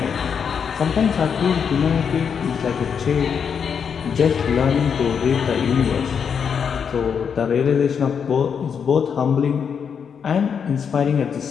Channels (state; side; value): quieter; right; 6.9 dB